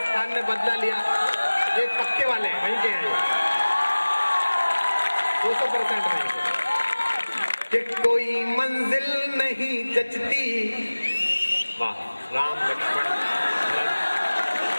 ने बदला लिया, ये पक्के वाले हैं, वहीं के हैं 200% नहीं। कि कोई मंजिल नहीं जचती। वाह, राम लक्ष्मण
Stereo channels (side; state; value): both; inverted; correlation -1.00